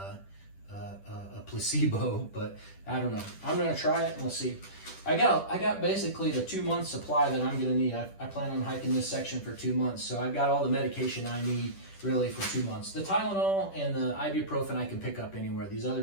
placebo, but I don't know. I'm gonna try it and we'll see. I got basically the 2-month supply that I'm gonna need. I plan on hiking this section for 2 months, so I've got all the medication I need really for 2 months. The Tylenol and the ibuprofen I can pick up anywhere. These other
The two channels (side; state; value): right; late; 10 ms